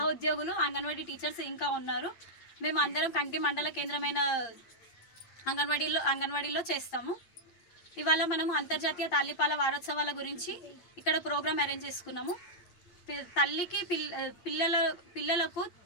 అంగన్వాడీ టీచర్స్ ఇంకా ఉన్నారు. మేము అందరం కంటి మండల కేంద్రమైన అంగన్వాడీలో చేస్తాము. ఇవాళ మనము అంతర్జాతీయ తల్లిపాల వారోత్సవాల గురించి ఇక్కడ ప్రోగ్రామ్ అరేంజ్ చేసుకున్నాము. తల్లికి పిల్లలకు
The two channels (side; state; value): right; late; 8.7 ms